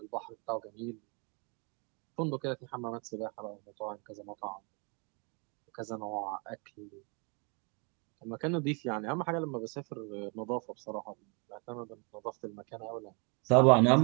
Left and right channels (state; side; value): quieter; left; 34.2 dB